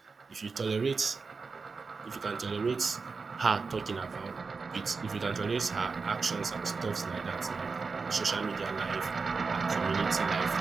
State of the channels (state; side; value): quieter; left; 4.7 dB